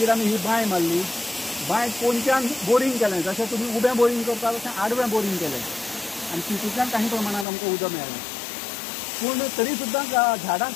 आमी ही बांय मारली बांय पोंच्यान बोरींग केलें जशें तुमी उबें बोरींग करता तशें आडवें बोरींग केलें आनी तितूंतल्यान काही प्रमाणांत आमकां उदक मेळ्ळें पूण तरी सुद्दां झाडांक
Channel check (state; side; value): drops out; right; at 7.5 s